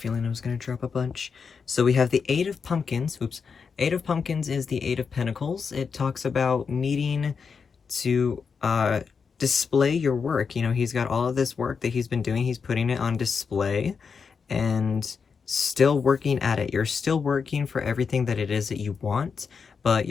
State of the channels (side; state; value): right; quieter; 5.7 dB